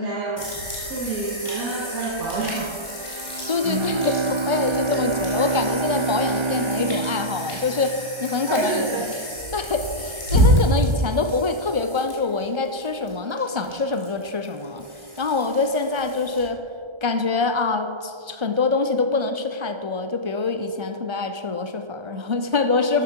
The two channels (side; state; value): left; late; 1.3 ms